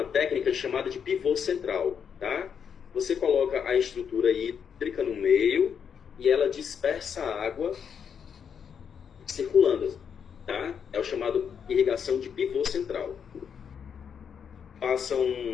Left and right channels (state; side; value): quieter; right; 7.3 dB